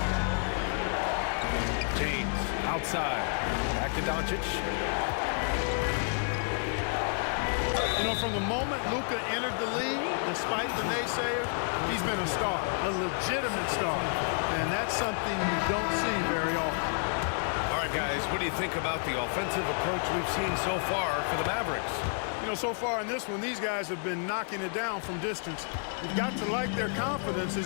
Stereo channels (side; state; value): right; silent; 58 dB below the other